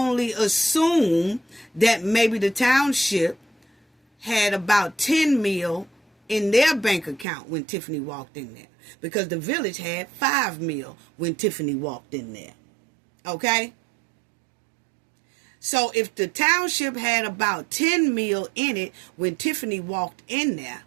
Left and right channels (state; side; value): drops out; left; at 7.2 s